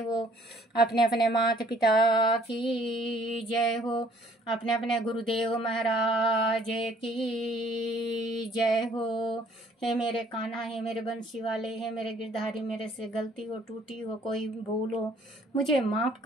अपने अपने माता पिता की जय हो। अपने अपने गुरुदेव महाराज की जय हो। हे मेरे कान्हा, हे मेरे बंसी वाले, हे मेरे गिरधारी, मेरे से गलती हो, टूटी हो, कोई भूल हो, मुझे माफ़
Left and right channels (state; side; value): normal; both; correlation 0.59